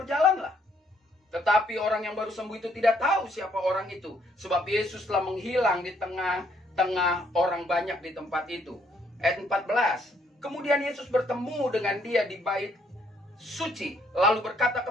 Tetapi orang yang baru sembuh itu tidak tahu siapa orang itu, sebab Yesus telah menghilang di tengah orang banyak di tempat itu. Ayat 14. Kemudian Yesus bertemu dengan dia di bait suci, lalu berkata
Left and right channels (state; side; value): normal; both; correlation 0.69